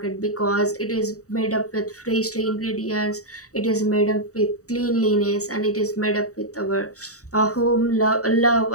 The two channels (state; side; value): late; right; 0.66 ms